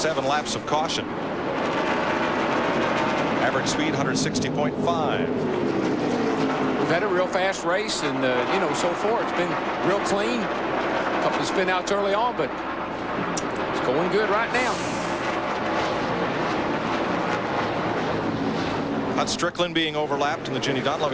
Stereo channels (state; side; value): identical; both; correlation 1.00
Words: 7 laps of caution. Average speed 160.5. We've had a real fast race, and you know, so far it's been real clean. A couple of spin outs early on, but it's going good right now. Hut Strickland being overlapped in the Ginny